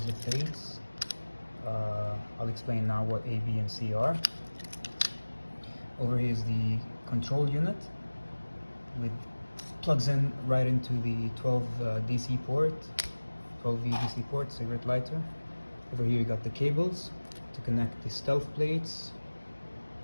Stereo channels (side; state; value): both; inverted; correlation -1.00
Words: the plates. I'll explain now what A, B and C are. Over here is the control unit with plugs in right into the 12 DC port. 12V DC port, cigarette lighter. Over here you got the cables to connect the stealth plates